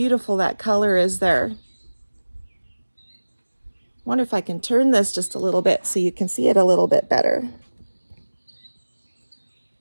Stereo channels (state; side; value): inverted; both; correlation -1.00